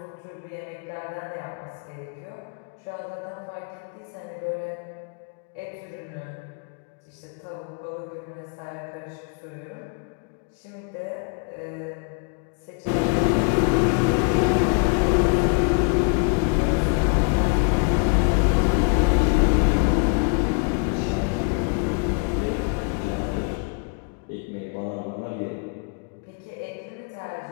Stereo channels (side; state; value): right; quieter; 39.0 dB